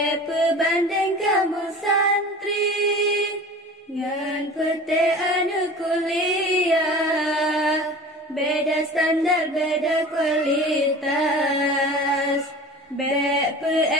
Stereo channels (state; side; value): normal; both; correlation 0.38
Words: kamu santri ngan pete anu kuliah, beda standar beda kualitas.